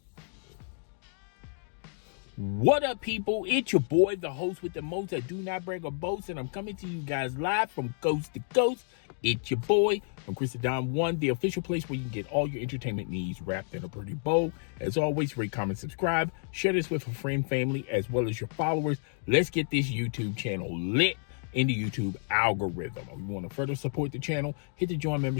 What up, people? It's your boy, the host with the most. I do not brag or boast, and I'm coming to you guys live from coast to coast. It's your boy from Christendom One, the official place where you can get all your entertainment needs wrapped in a pretty bow. As always, rate, comment, subscribe, share this with a friend, family, as well as your followers. Let's get this YouTube channel lit in the YouTube algorithm. If you want to further support the channel, hit the join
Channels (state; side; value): silent; right; 58 dB below the other